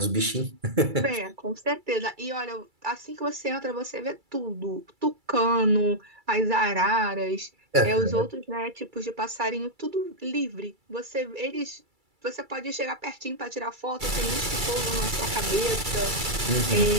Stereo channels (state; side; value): late; left; 2.3 ms